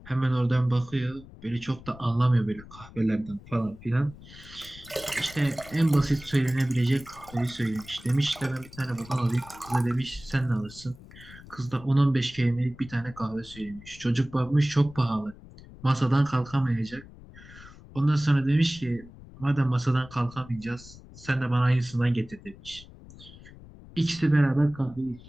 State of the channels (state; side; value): noise; left; rumble, 19 dB below the sound